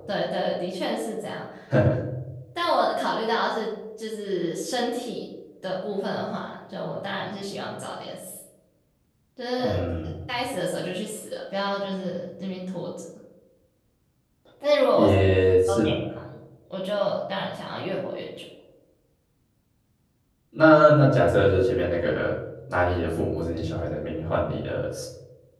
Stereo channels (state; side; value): identical; both; correlation 1.00